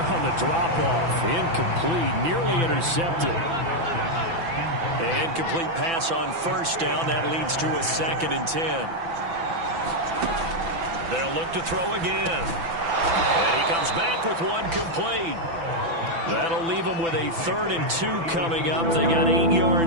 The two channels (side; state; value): left; late; 6.0 ms